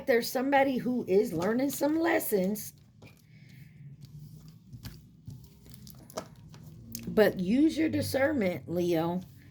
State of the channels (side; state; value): both; identical; correlation 1.00